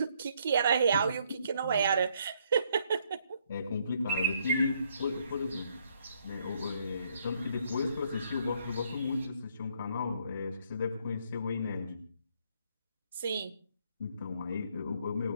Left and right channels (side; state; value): both; inverted; correlation -0.70